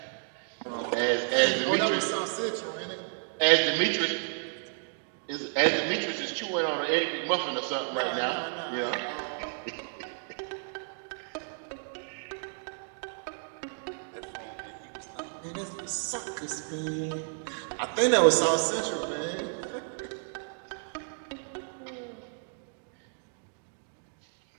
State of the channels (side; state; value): left; silent; digital silence